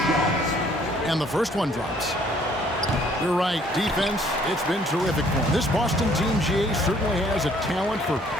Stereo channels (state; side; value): normal; both; correlation 0.61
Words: And the first one drops. You're right. Defense, it's been terrific for them. This Boston team, GA, certainly has a talent for